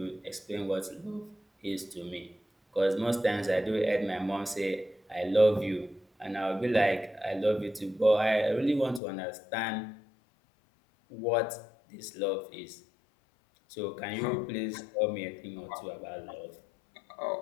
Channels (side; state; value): right; drops out; at 9.0 s